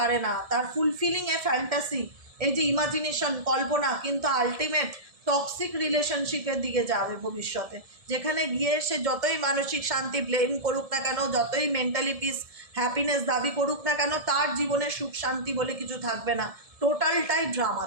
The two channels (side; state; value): left; late; 1.7 ms